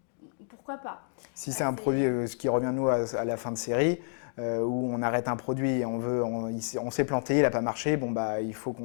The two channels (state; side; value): silent; right; digital silence